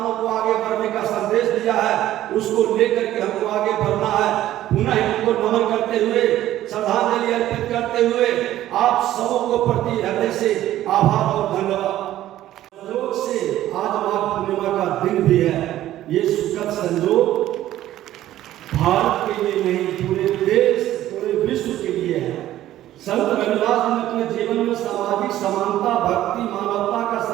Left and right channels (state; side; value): quieter; left; 13.6 dB